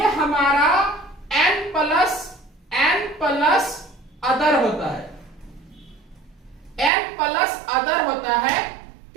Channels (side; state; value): left; drops out; at 6.9 s